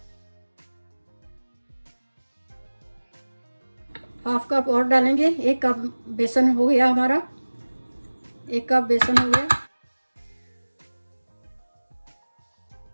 ½ कप और डालेंगे। 1 कप बेसन हो गया हमारा, 1 कप बेसन हो गया।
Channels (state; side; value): inverted; both; correlation -1.00